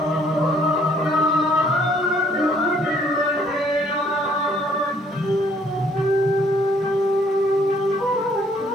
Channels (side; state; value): both; normal; correlation 0.63